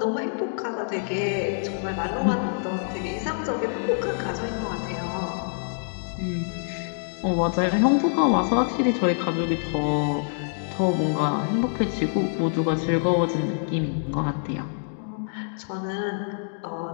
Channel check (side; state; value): right; silent; digital silence